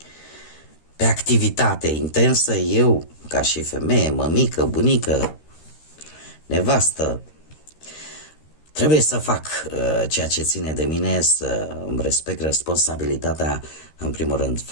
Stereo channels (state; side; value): late; right; 13 ms